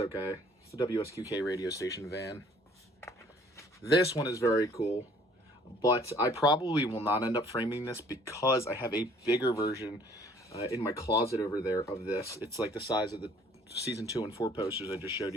It's the WSQK radio station van. This one is very cool, but I probably will not end up framing this because I have a bigger version in my closet over there of this. It's like the size of the season 2 and 4 posters I just showed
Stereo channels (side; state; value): both; normal; correlation 0.57